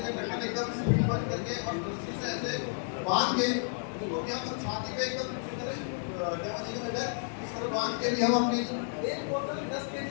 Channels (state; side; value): silent; right; digital silence